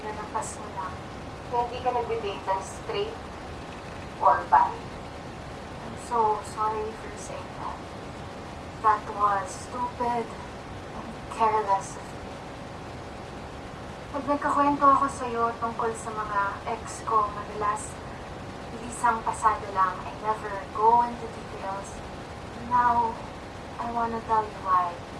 mo lang. Na hindi ka nagde-date ng straight or bi. I'm so sorry for saying that. nagkakwento ako sa'yo tungkol sa mga ex ko, madalas isang pasado lang. I never go into details. Now, I wanna tell you why.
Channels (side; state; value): both; identical; correlation 1.00